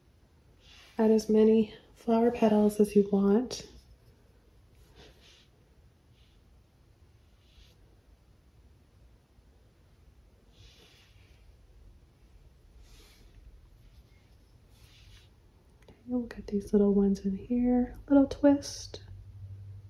add as many flower petals as you want. We'll get these little ones in here, little twist.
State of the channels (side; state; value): both; identical; correlation 1.00